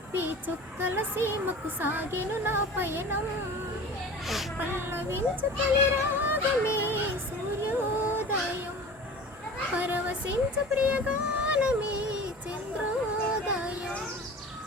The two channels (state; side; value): normal; both; correlation 0.38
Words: చుక్కల సీమకు సాగెను నా పయనం. పల్లవించు తొలి రాగమే సూర్యోదయం, పరవశించు ప్రియగానమే చంద్రోదయం.